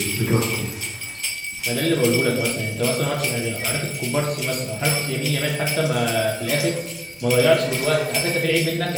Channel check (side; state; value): both; identical; correlation 1.00